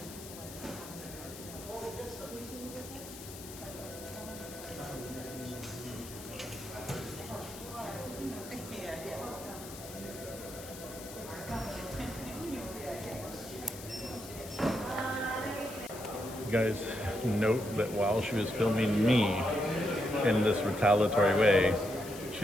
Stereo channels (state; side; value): noise; left; hiss, 14 dB below the sound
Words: Guys, note that while she was filming me in this retaliatory way,